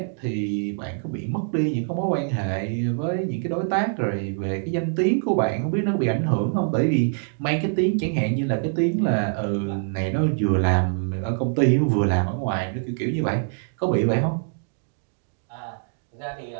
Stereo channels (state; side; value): silent; left; 62 dB below the other